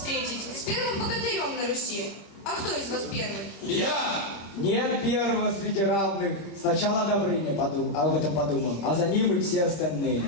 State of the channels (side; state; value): right; late; 26 ms